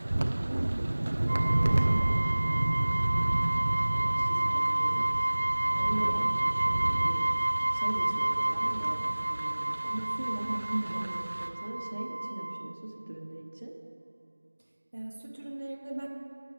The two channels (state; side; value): inverted; both; correlation -1.00